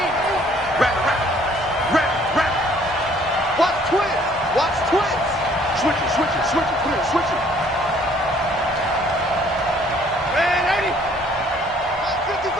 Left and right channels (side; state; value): both; normal; correlation 0.59